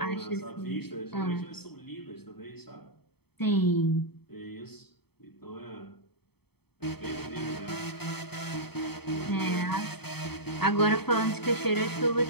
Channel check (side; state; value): right; late; 0.97 ms